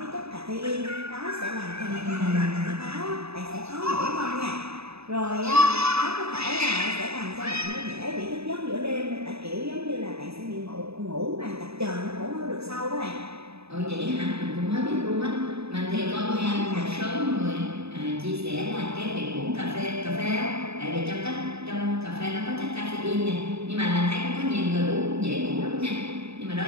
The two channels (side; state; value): left; late; 0.79 ms